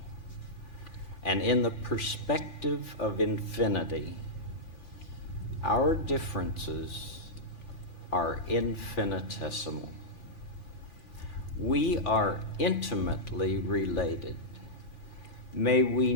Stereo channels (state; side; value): late; right; 5.9 ms